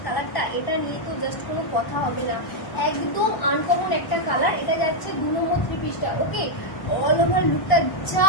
কালারটা, এটা নিয়ে তো জাস্ট কোনো কথা হবে না, একদম আনকমন একটা কালার। এটা যাচ্ছে 2 নম্বর থ্রি পিসটা। ওকে, অল ওভার লুকটা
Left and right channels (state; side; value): late; right; 1.0 ms